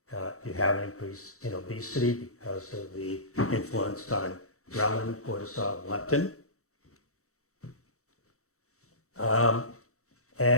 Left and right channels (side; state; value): right; late; 0.64 ms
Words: you have an increase in obesity because of the influence on ghrelin, cortisol, and leptin.